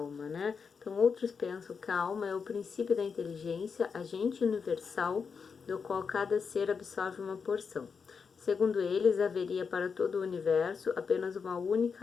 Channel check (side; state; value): right; quieter; 5.7 dB